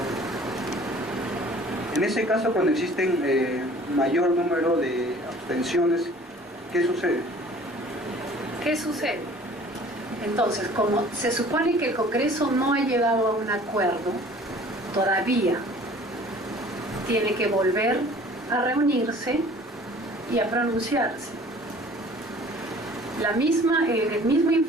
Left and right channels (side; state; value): both; normal; correlation 0.49